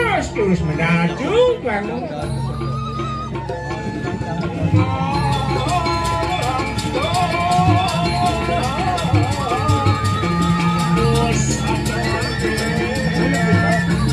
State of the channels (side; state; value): both; identical; correlation 1.00